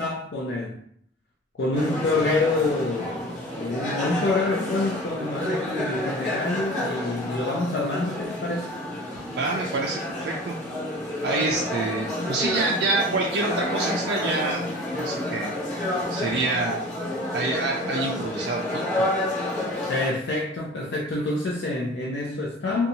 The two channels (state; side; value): normal; both; correlation 0.40